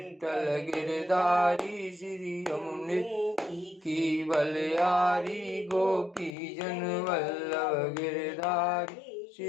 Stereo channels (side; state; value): right; drops out; at 6.3 s